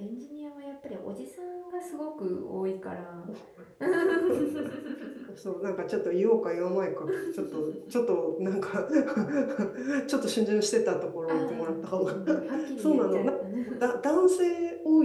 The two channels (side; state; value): both; identical; correlation 1.00